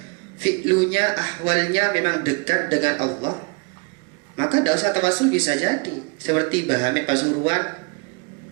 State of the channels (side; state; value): left; quieter; 32.0 dB